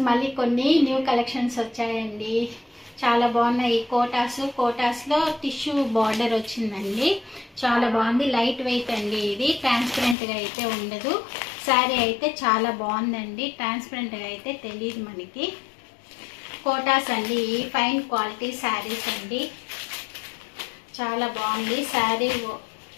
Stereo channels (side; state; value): right; drops out; at 10.2 s